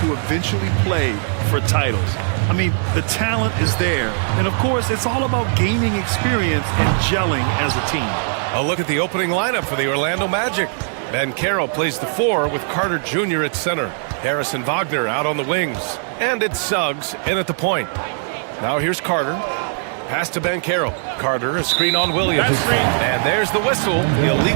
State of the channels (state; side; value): silent; left; digital silence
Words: eventually play for titles. I mean, the talent is there. And, of course, it's all about gaining experience and gelling as a team. A look at the opening lineup for the Orlando Magic. Bancaro plays the 4 with Carter Jr. at center. Harris and Wagner out on the wings. And it's Suggs in at the point. Now here's Carter. Pass to Bancaro. Carter, a screen on Williams. And there's the whistle. The